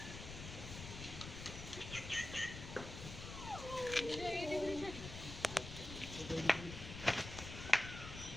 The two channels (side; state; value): left; noise; rumble, 9 dB below the sound